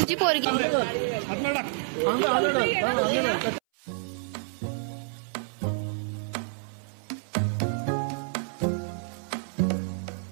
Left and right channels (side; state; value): left; silent; 59 dB below the other